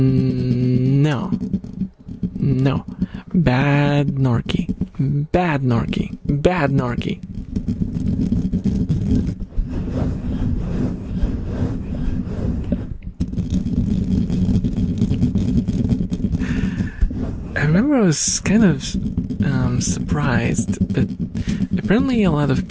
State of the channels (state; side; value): identical; both; correlation 1.00